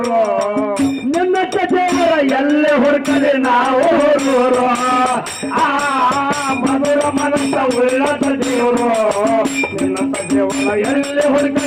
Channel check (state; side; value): identical; both; correlation 1.00